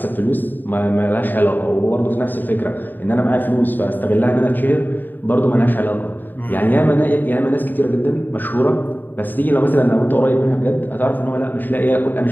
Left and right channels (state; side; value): late; right; 0.090 ms